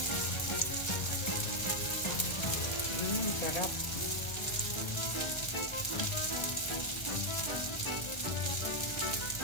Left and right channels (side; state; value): right; late; 1.4 ms